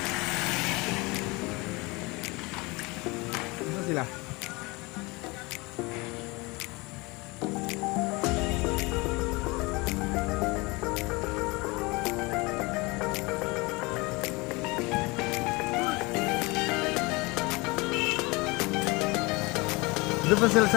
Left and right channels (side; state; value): right; quieter; 25.1 dB